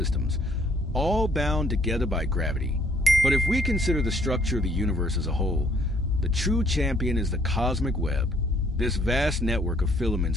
all bound together by gravity. But if we consider the structure of the universe as a whole, the true champion is the cosmic web. This vast network of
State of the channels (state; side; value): normal; both; correlation 0.64